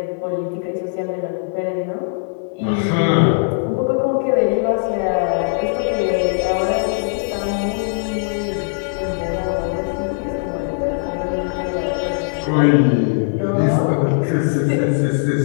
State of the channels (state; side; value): silent; right; digital silence